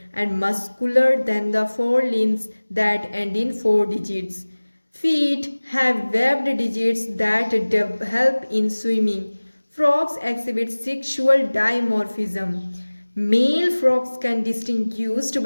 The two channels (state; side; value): inverted; both; correlation -1.00